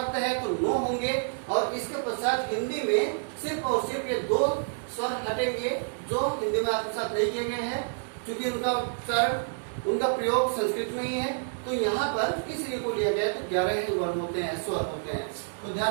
है तो 9 होंगे, और इसके पश्चात हिंदी में सिर्फ और सिर्फ ये 2 स्वर हटेंगे जो हिंदी में आत्मसात नहीं किए गए हैं, क्योंकि उनका उच्चारण, उनका प्रयोग संस्कृत में ही है। तो यहाँ पर इसलिए को लिया गया तो 11 ही वर्ण होते हैं, स्वर होते हैं। तो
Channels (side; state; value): left; silent; digital silence